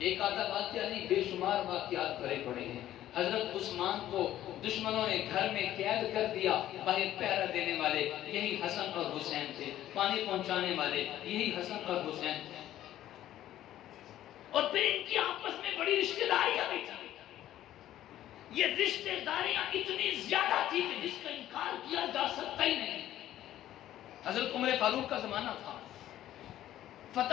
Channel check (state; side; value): quieter; right; 12.9 dB